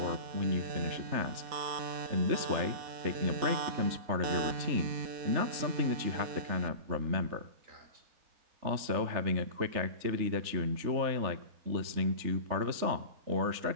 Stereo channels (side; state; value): left; late; 3.4 ms